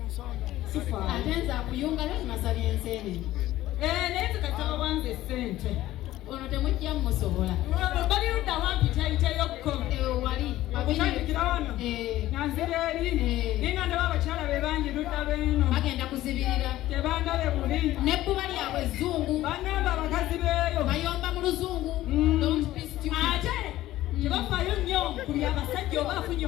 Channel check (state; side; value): quieter; right; 15.1 dB